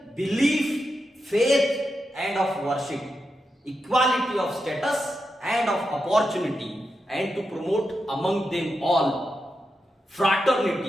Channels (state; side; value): normal; both; correlation 0.87